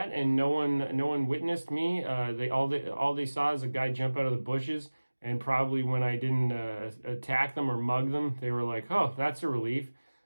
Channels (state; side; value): inverted; both; correlation -1.00